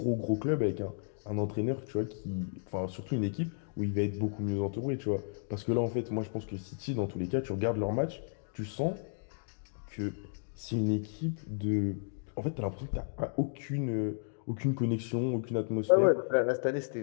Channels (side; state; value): right; silent; digital silence